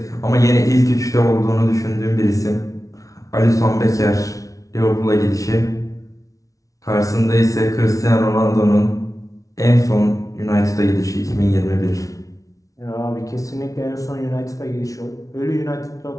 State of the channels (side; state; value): right; late; 0.17 ms